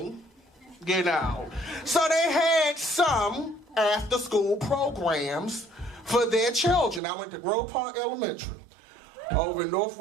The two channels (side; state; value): left; drops out; at 7.0 s